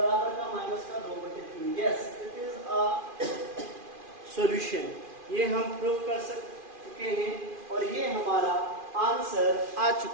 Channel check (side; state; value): left; late; 2.4 ms